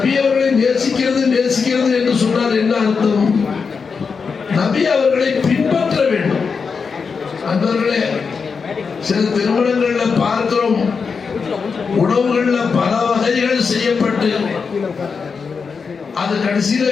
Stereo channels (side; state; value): right; quieter; 5.4 dB